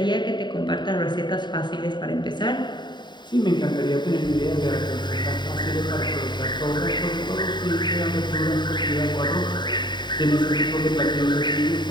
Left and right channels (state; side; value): late; right; 0.22 ms